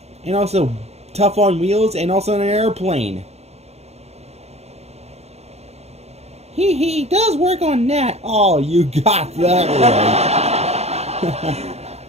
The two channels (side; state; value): left; late; 0.31 ms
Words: tough on wheels, and also an airplane. He does work on that. Oh, you got that right.